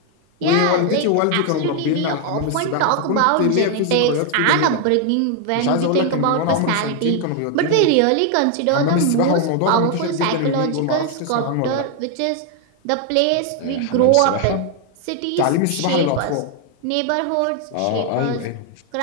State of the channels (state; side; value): different; both; correlation 0.01